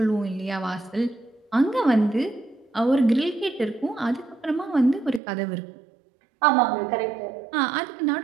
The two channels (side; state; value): left; drops out; at 5.2 s